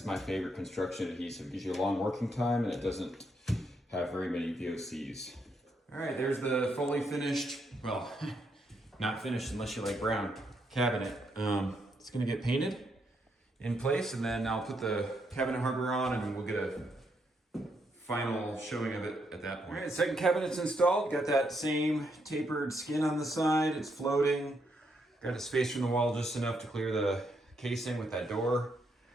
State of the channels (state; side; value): normal; both; correlation 0.77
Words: is my favorite construction adhesive. It gives you a long working time and it doesn't have very many VOCs. All right, there's the fully finished, well, not finished unless you like brown, cabinet. It's gonna get painted in place, and then I'll put the cabinet hardware on and we'll get a final showing of it at that point. All right, second cabinet's installed. Got that same tapered skin on the side. It's floating. Got it spaced from the wall just enough to clear the casing with that door.